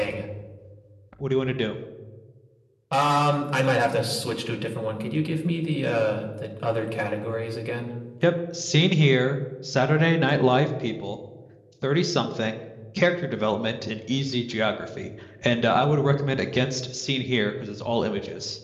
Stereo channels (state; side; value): identical; both; correlation 1.00